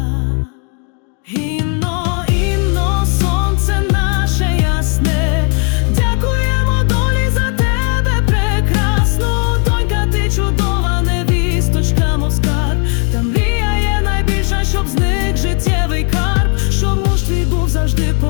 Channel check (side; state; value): right; quieter; 38.3 dB